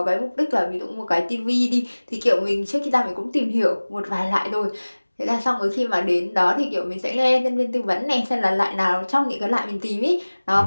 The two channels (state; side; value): inverted; both; correlation -1.00